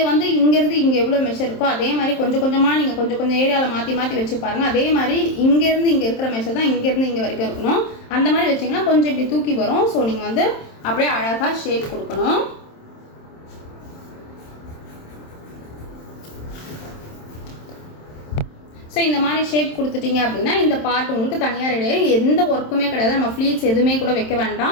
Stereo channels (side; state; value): right; late; 27 ms